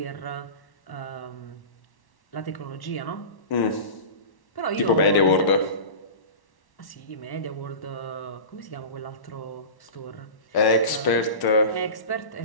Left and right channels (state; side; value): late; right; 1.1 ms